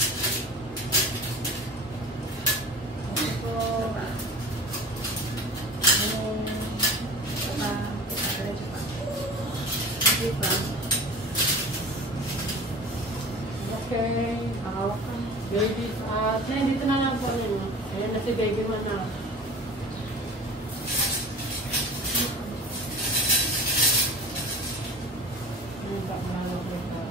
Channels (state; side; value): normal; both; correlation 0.37